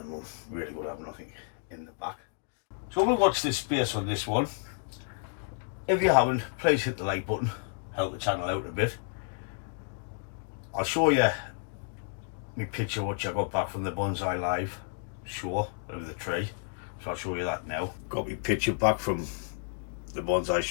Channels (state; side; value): silent; right; 57 dB below the other